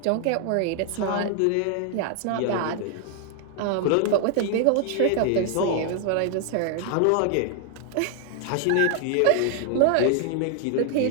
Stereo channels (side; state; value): both; different; correlation 0.00